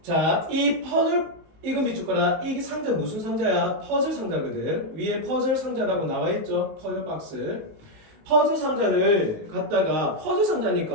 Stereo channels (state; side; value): late; left; 19 ms